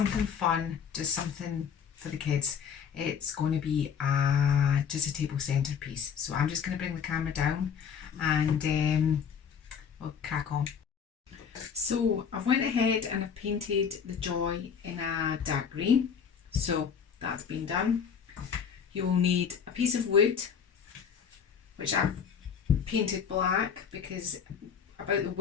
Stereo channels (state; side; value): quieter; right; 7.1 dB